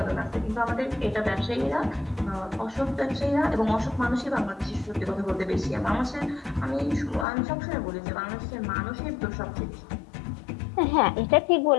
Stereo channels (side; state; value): right; drops out; at 7.2 s